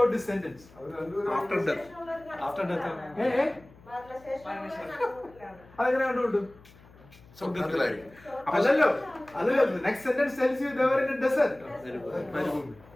this sentence? After death. അതെങ്ങനെ കണ്ടുകൊണ്ടു? സ്വർഗത്തിലായിരിക്കും. അല്ലല്ലോ, next sentence tells you they were in a desert.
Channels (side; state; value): left; noise; hum, 24 dB below the sound